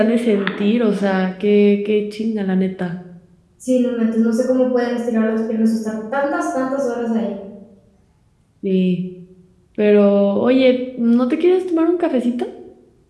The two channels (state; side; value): identical; both; correlation 1.00